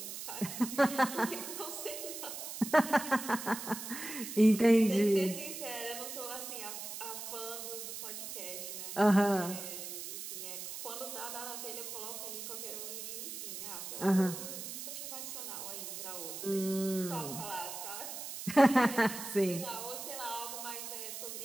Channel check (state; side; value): noise; right; hiss, 7 dB below the sound